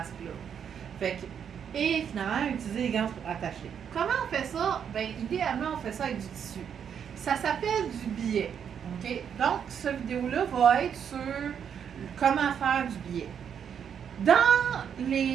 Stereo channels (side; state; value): left; quieter; 8.0 dB